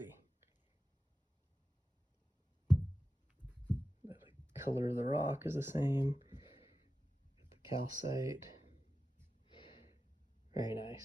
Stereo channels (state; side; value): normal; both; correlation 0.93